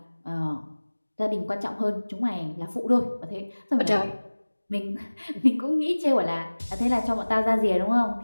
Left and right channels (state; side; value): inverted; both; correlation -1.00